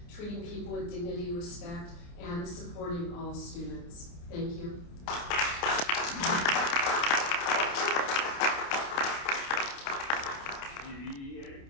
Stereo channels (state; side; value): late; right; 29 ms